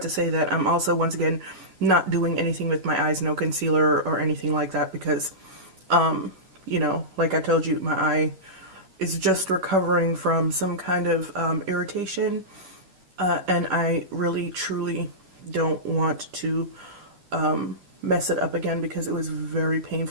to say that I'm also, once again, not doing anything with my eyes, no concealer or anything like that, because, you know, like I told you, my eye is just recovering from some kind of irritation, and I really, truly don't want to mess it up again, because it was very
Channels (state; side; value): late; left; 11 ms